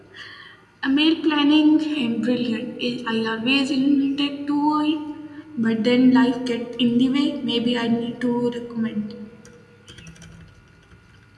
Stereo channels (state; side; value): identical; both; correlation 1.00